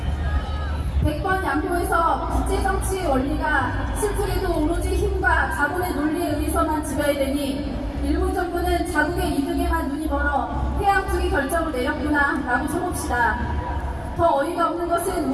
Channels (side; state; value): both; identical; correlation 1.00